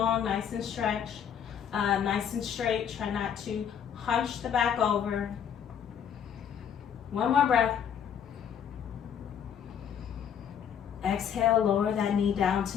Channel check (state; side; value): quieter; right; 8.3 dB